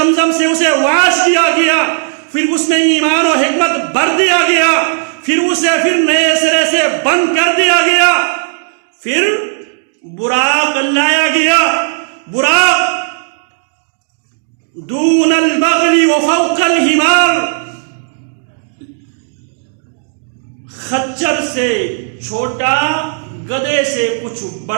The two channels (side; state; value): left; silent; 71 dB below the other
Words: سے اسے واش کیا گیا، پھر اس میں ایمان و حکمت بھر دیا گیا، پھر اسے نئے سرے سے بند کر دیا گیا، پھر براق لایا گیا، براق دون البغل وفوق الحمار، خچر سے چھوٹا، گدھے سے کچھ